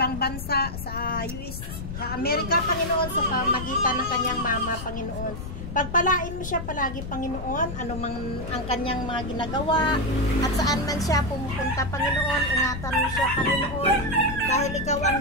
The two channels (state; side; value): noise; left; rumble, 8 dB below the sound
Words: bansa, sa US, sa Amerika, Panginoon, sa pamagitan ng kanyang mama, Panginoon. Pagpalain mo siya palagi, Panginoon, ano mang ang kanyang mga ginagawa, at saan man siya pumupunta, Panginoon, ingatan mo siya, Panginoon, dahil ikaw